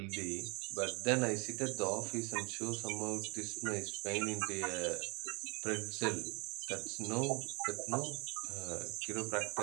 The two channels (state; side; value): quieter; left; 29.0 dB